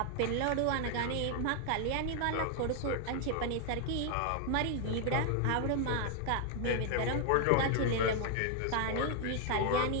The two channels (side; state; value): both; different; correlation 0.00